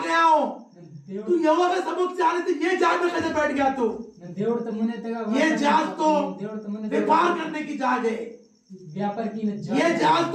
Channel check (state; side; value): identical; both; correlation 1.00